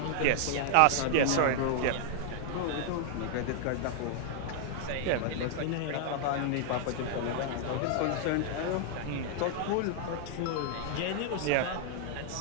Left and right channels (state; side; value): different; both; correlation -0.01